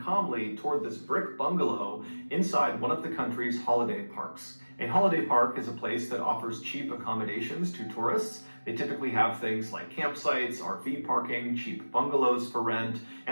toward this brick bungalow inside one of the country's holiday parks. A holiday park is a place that offers cheap accommodations to tourists. They typically have things like campsites, RV parking, cheap bungalows for rent,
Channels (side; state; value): both; inverted; correlation -1.00